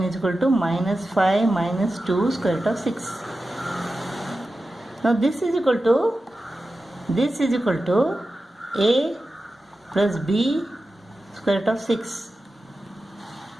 is equal to minus 5 minus 2 square root of 6. Now this is equal to a plus b square root of 6.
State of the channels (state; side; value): normal; both; correlation 0.93